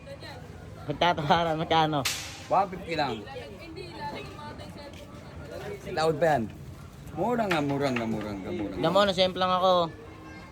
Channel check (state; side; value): identical; both; correlation 1.00